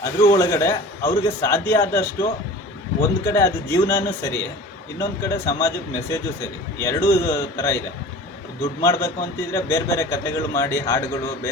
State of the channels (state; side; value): normal; both; correlation 0.40